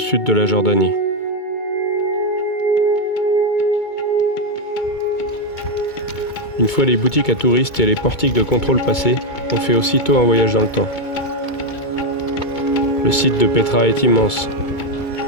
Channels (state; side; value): late; right; 2.2 ms